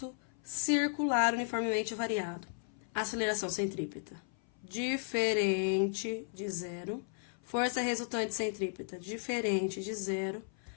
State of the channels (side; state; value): right; silent; 54 dB below the other